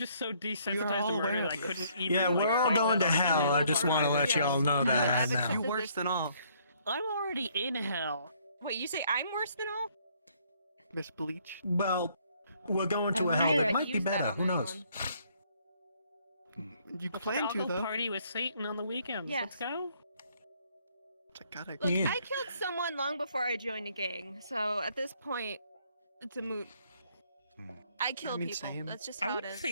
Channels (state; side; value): inverted; both; correlation -0.66